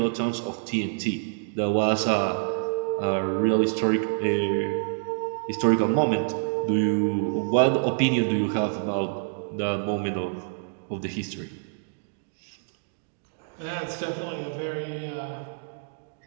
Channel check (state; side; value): silent; left; digital silence